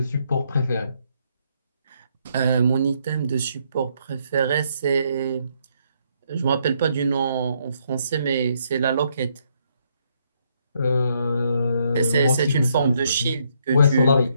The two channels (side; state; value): both; inverted; correlation -0.73